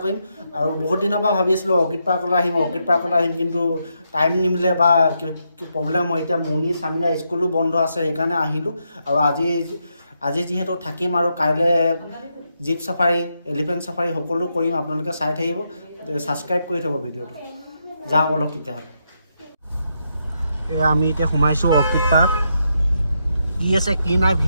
কৰিম আৰু বহুত দিনৰ পৰা ভাবি আছিলোঁ অৰ্কিড পাৰ্কলৈ আহিম কিন্তু টাইম নিমিলে বা প্ৰব্লেম হয় এতিয়া মুনি স্বামীৰা স্কুলো বন্ধ আছে সেইকাৰণে আহিলোঁ আৰু আজি যিহেতু থাকিম আৰু কাইলৈ জীপ চাফাৰী এলিফেণ্ট চাফাৰী সকলো কৰিম আপোনালোকে চাই থাকিব ছাবস্ক্ৰাইব কৰি থ'ব ভিডিঅ'টো যাওঁ অলপ তেতিয়াহ'লে আমি এতিয়া সোমাইছোঁ অৰ্কিড পাৰ্ক কি আছে কি নাই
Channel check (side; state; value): both; inverted; correlation -0.81